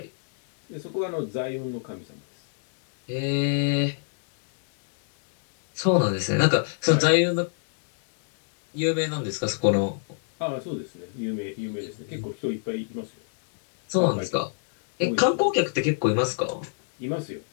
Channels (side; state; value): right; silent; digital silence